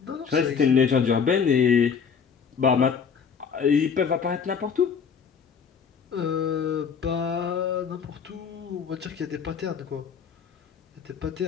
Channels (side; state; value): right; quieter; 6.5 dB